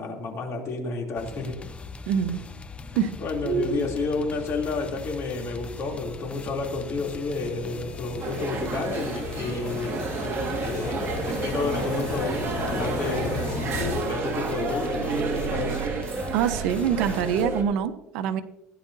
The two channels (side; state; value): both; normal; correlation 0.40